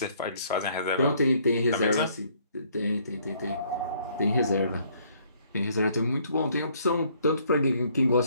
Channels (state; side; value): inverted; both; correlation -0.64